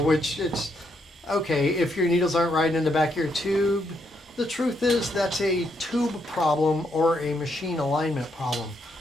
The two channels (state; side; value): normal; both; correlation 0.76